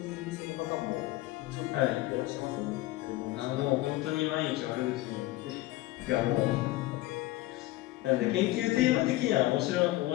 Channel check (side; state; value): right; quieter; 17.8 dB